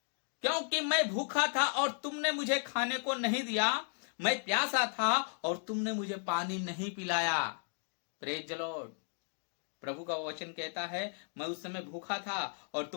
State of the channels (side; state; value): right; silent; digital silence